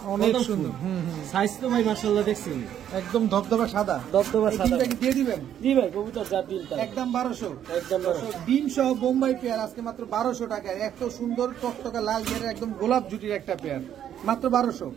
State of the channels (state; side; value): quieter; left; 10.1 dB